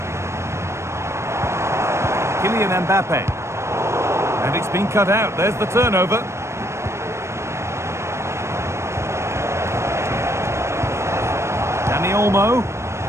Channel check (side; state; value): left; late; 0.13 ms